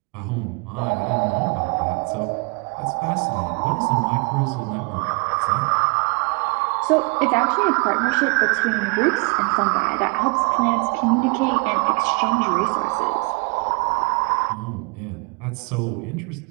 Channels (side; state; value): left; quieter; 31.1 dB